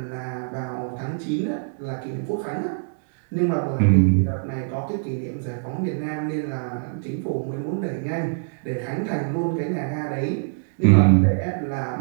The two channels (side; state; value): left; silent; digital silence